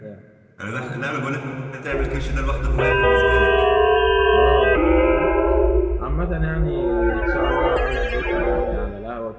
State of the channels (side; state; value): both; identical; correlation 1.00